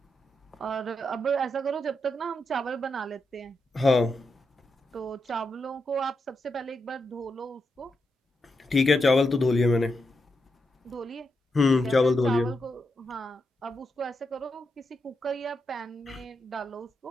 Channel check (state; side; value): normal; both; correlation 0.84